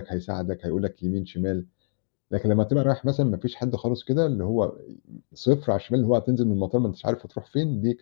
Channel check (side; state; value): right; silent; digital silence